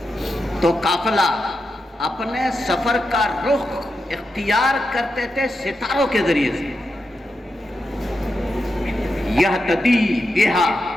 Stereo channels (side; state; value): both; normal; correlation 0.87